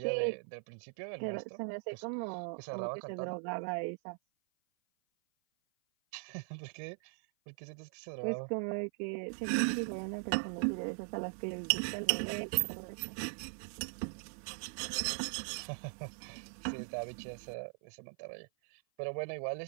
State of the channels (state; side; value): silent; left; 51 dB below the other